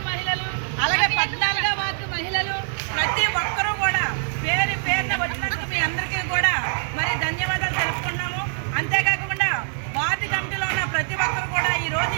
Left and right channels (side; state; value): left; silent; digital silence